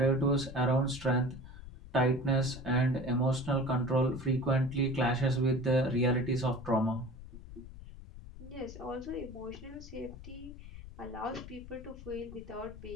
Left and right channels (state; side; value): noise; left; rumble, 14 dB below the sound